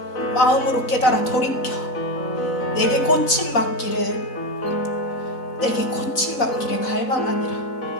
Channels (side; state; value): right; late; 4.0 ms